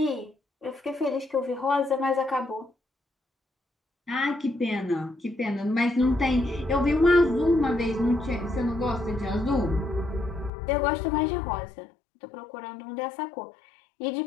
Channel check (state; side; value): drops out; right; at 10.5 s